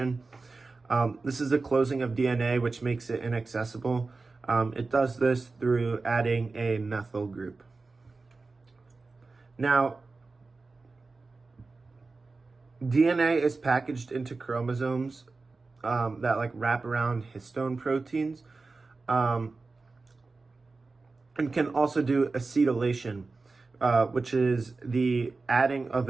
This is a closing of DNA which makes it inaccessible. It does this through adding a methyl group. Now, DNA is packaged into chromosomes that wrap around histone proteins, and can also do acetylation, which is the adding of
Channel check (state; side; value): quieter; left; 3.8 dB